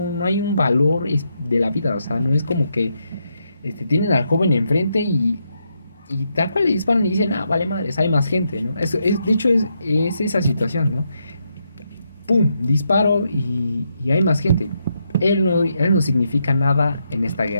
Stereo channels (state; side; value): inverted; both; correlation -0.80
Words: hay un valor de la vida. O sea, no es como que tienen al joven enfrente y tal cual le disparan y dicen, ah, vale madres, hay más gente, ¿no? De hecho, es esa situación, ¿no? ¡Pum! Disparo y hay más gente. Él no significa nada en esta